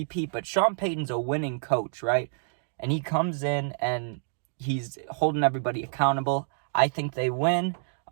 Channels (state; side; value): silent; left; digital silence